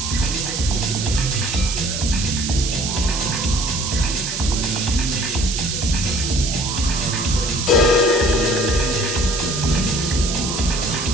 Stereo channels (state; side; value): noise; right; hiss, 4 dB below the sound